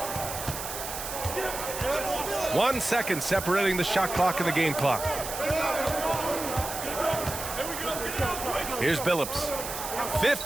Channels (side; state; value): right; noise; hiss, 7 dB below the sound